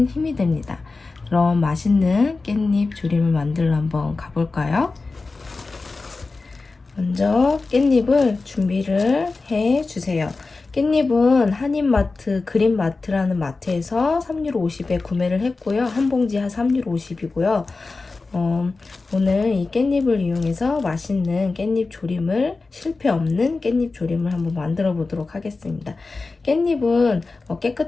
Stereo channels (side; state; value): right; quieter; 3.8 dB